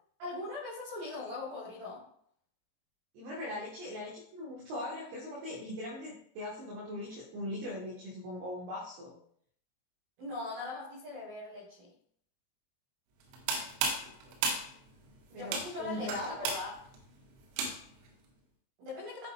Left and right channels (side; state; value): left; late; 23 ms